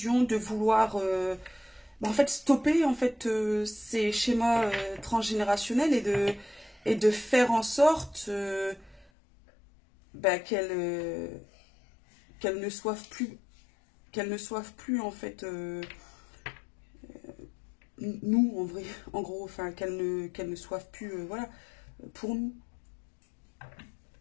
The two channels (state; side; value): drops out; right; at 9.1 s